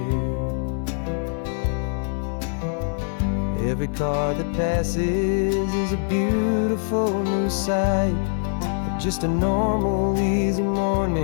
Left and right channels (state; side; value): silent; right; digital silence